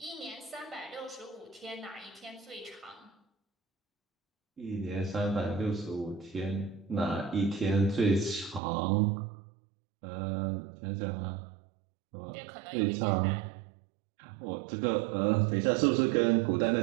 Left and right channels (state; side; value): drops out; left; at 8.6 s